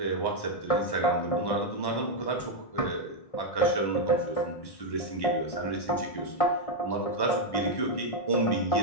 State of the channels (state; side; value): late; right; 1.1 ms